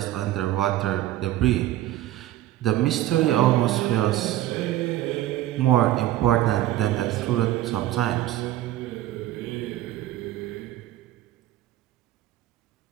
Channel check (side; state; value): left; quieter; 14.4 dB